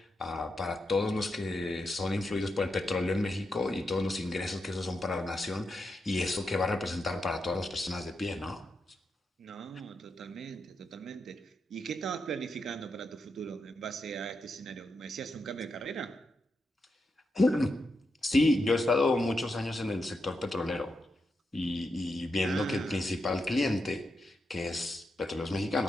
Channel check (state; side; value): normal; both; correlation 0.85